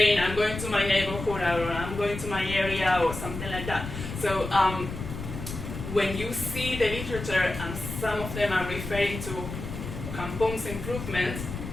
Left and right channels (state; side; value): noise; left; rumble, 8 dB below the sound